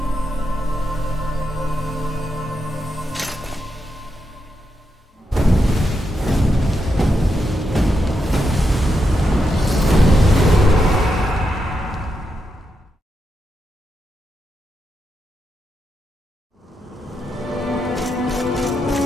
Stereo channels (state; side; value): normal; both; correlation 0.85